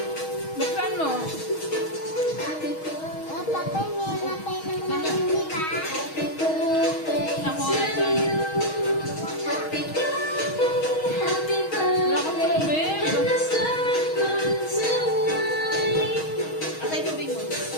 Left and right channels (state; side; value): late; right; 6.3 ms